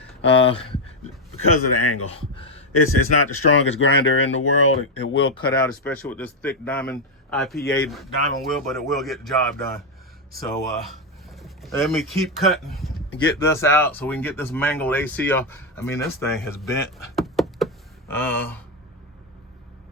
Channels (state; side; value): normal; both; correlation 0.05